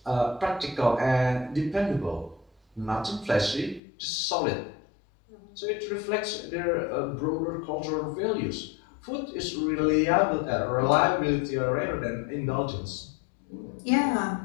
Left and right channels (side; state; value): right; drops out; at 3.8 s